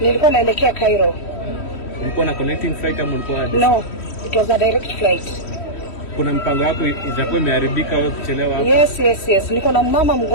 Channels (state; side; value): late; right; 3.1 ms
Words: Nilikuwa naelekea Cairo. Ulikuwa na connecting flight ama ulikuwa? No, it was a direct flight. Kuna mpango wako itakuwa imeharibika wewe kuchelewa hapo? Yes. Niko na mama